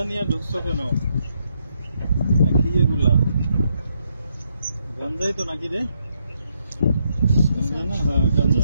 নিয়ে ঢুকছো কেন? কি এগুলা? গাঞ্জাই তো নাকি রে? গাঞ্জা না? হ্যাঁ গাঞ্জা।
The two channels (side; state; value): both; inverted; correlation -0.77